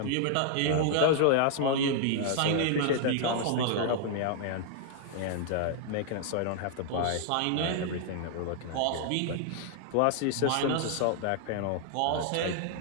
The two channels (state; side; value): different; both; correlation 0.00